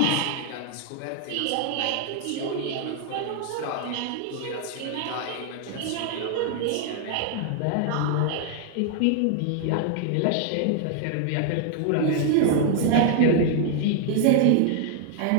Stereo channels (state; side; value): different; both; correlation 0.00